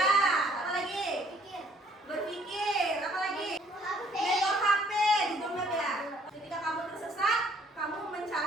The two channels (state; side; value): normal; both; correlation 0.61